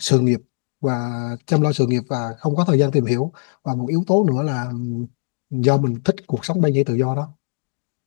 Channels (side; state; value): right; silent; digital silence